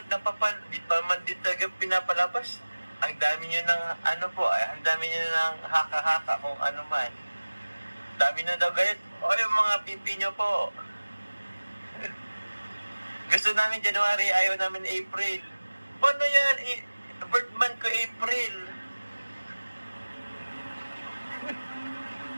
pinapalabas. Ang dami nyo ng ang dami nyo ng haka-haka kung ano man. Dami na daw gayat. O yung mga pipi nyo po. Gusto namin January, ayaw namin April. Paano yan? Birth month ko April.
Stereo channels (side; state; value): both; inverted; correlation -1.00